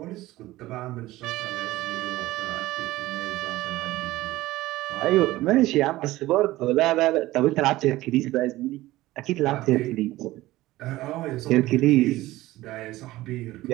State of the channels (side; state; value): left; quieter; 17.4 dB